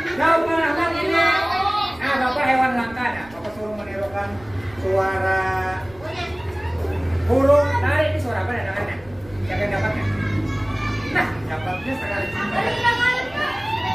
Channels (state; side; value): noise; right; rumble, 23 dB below the sound